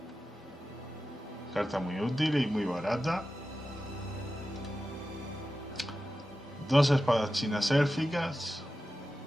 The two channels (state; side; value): normal; both; correlation 0.93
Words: carta muy útil y muy barata. 2 espadas chinas élficas.